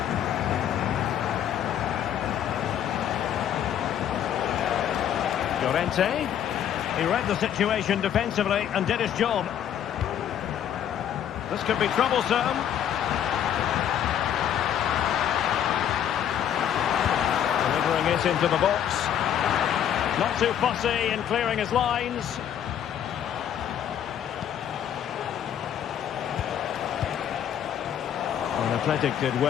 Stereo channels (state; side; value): quieter; right; 9.8 dB